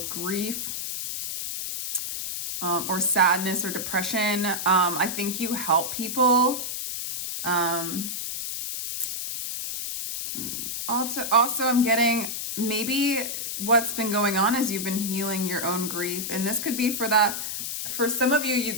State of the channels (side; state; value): left; noise; hiss, 4 dB below the sound